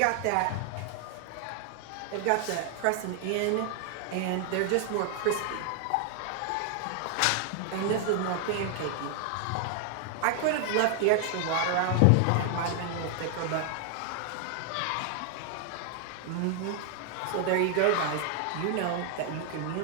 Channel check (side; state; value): both; different; correlation 0.00